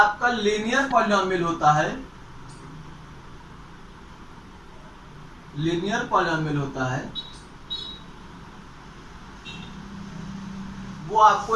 लीनियर पॉलिनोमियल होता है, लीनियर पॉलिनोमियल होता है, वो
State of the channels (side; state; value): both; identical; correlation 1.00